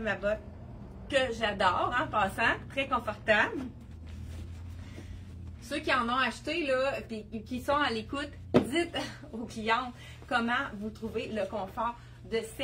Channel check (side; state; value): both; identical; correlation 1.00